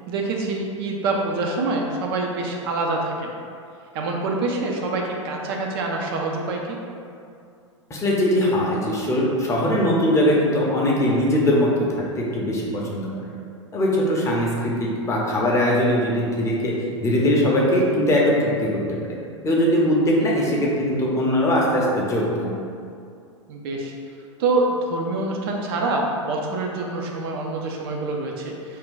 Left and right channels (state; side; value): normal; both; correlation 0.20